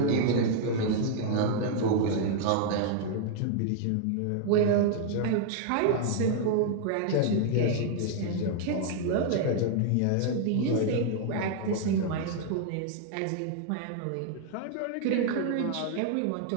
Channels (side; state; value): both; different; correlation 0.00